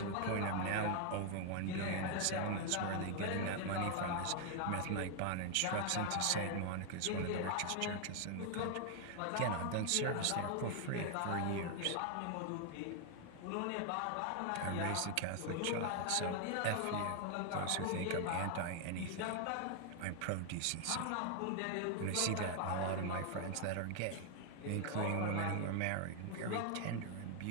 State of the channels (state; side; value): different; both; correlation 0.00